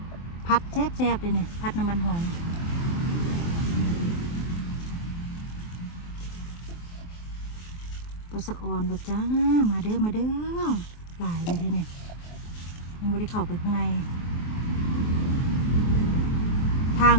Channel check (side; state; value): right; late; 23 ms